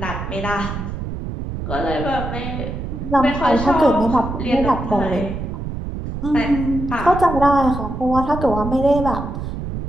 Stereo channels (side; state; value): right; noise; rumble, 6 dB below the sound